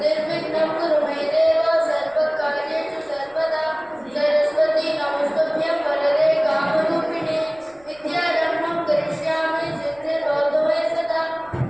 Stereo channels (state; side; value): noise; right; rumble, 29 dB below the sound